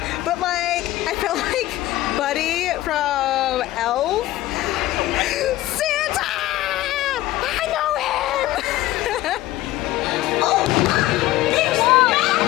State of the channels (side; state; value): right; quieter; 16.1 dB